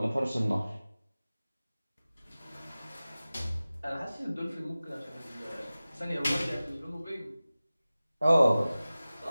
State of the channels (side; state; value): both; inverted; correlation -0.97